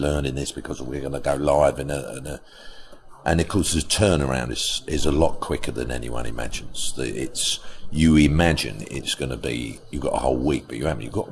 this, because we're going to go live and of course the turnaround is a lot quicker than anyone imagines. You imagine it's going to be, you've got a whole week, but you haven't. You've got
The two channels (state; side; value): identical; both; correlation 1.00